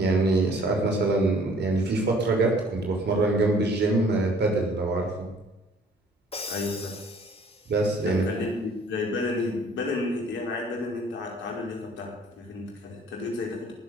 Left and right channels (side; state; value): both; normal; correlation 0.56